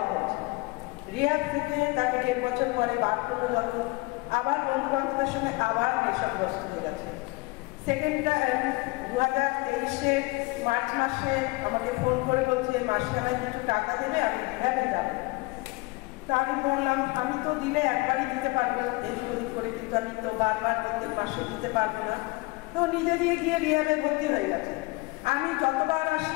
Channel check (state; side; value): quieter; right; 24.4 dB